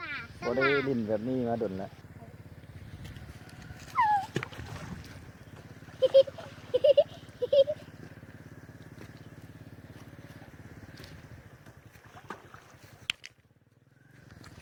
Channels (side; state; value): both; identical; correlation 1.00